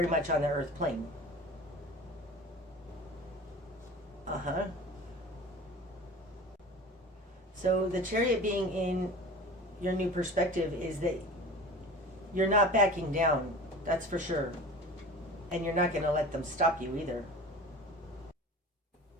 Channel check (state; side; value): normal; both; correlation 0.37